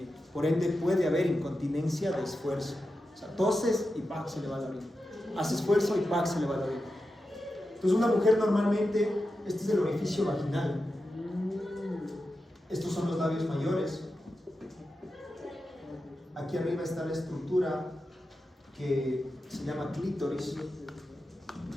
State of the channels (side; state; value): both; normal; correlation 0.91